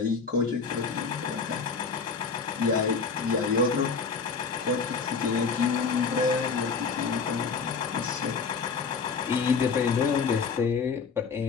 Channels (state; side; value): quieter; right; 5.2 dB